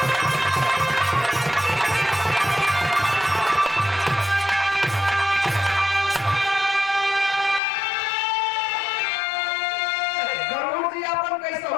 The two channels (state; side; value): drops out; right; at 7.6 s